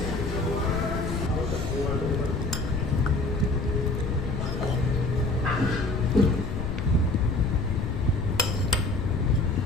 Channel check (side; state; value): left; noise; rumble, 4 dB below the sound